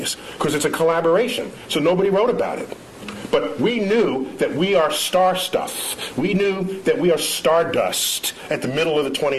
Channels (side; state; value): both; identical; correlation 1.00